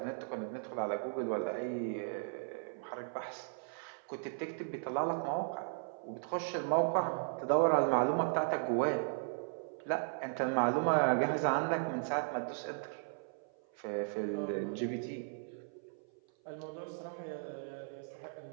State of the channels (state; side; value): silent; left; 53 dB below the other